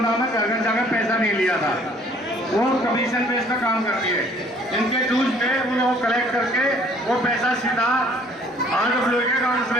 में घर घर जाकर पैसा नहीं लिया था, वो कमीशन बेस पर काम करती है। इनके ड्यूज पे उन्हें वो कलेक्ट करके वो पैसा सीधा RWA के अकाउंट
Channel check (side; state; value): both; normal; correlation 0.58